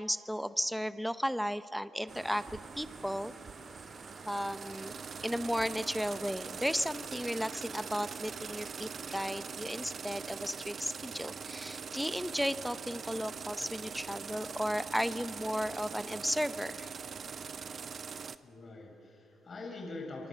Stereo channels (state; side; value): normal; both; correlation 0.97